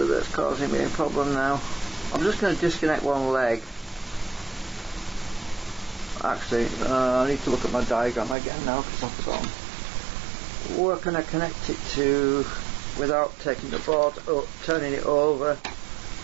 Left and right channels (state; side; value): drops out; left; at 8.3 s